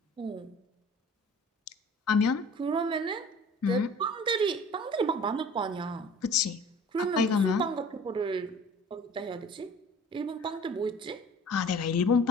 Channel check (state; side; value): normal; both; correlation 0.46